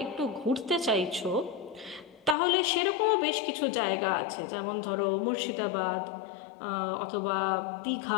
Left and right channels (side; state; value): right; drops out; at 2.4 s